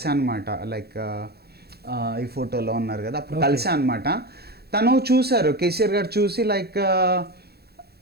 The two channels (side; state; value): left; late; 0.46 ms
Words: అనమాట, లైక్ ఈ ఫోటోలో ఉన్నారు కదా, అప్పుడు కలిసాను అనమాట. తను చూశారు, కేసీఆర్ గారు చూసి like